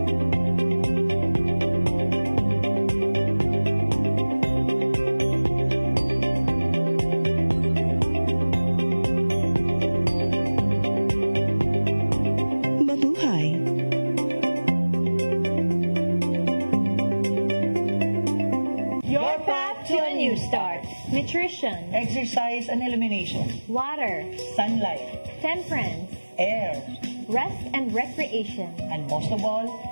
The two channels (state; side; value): inverted; both; correlation -1.00